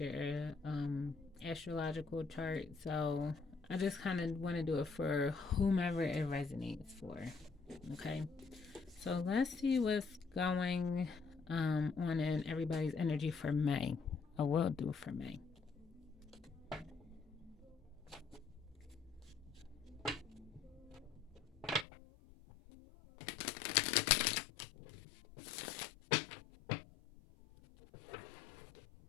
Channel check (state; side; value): drops out; right; at 21.9 s